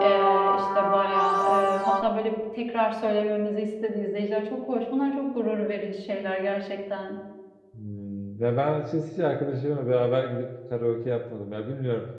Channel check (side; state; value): both; identical; correlation 1.00